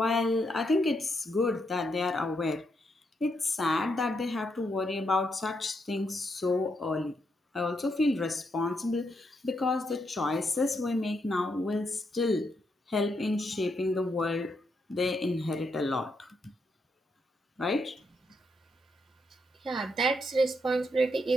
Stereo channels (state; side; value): normal; both; correlation 0.79